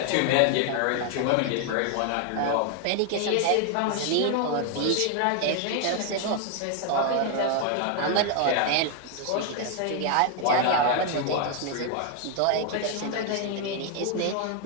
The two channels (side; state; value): both; different; correlation 0.00